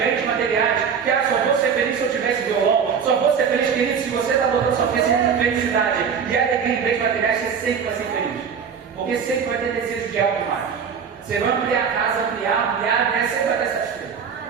materiais. Que só vou ser feliz se eu tivesse violão, só vou ser feliz, querido, se você está botando sua felicidade e alegria em bens materiais, você sempre vai ser feliz. Porque sempre vai ter desejo de algo mais. Você vai ampliar a casa, ampliar, né? Sempre vai ter satisfeito.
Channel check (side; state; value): left; quieter; 6.8 dB